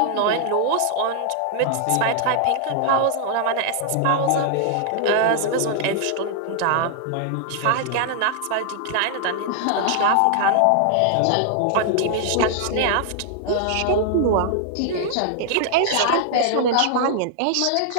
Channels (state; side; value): different; both; correlation -0.01